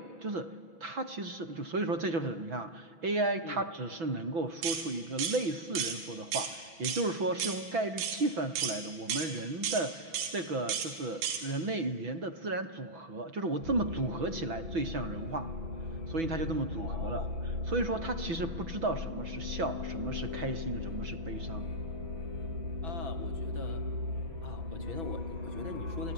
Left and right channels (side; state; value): left; late; 6.0 ms